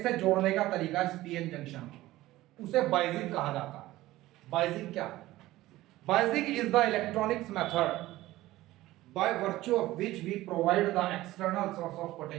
से जोड़ने का तरीका इस पीएन जंक्शन, उसे बाइजिंग कहा जाता है। बाइजिंग क्या? Biasing is the electronics method by virtue of which we provide the external source of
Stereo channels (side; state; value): left; quieter; 16.7 dB